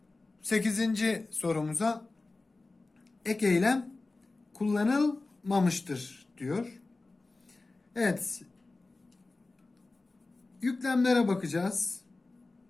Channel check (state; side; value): quieter; right; 3.4 dB